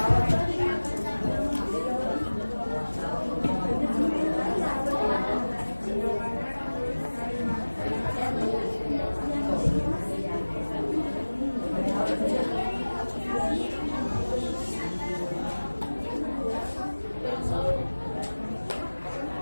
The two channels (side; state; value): both; inverted; correlation -1.00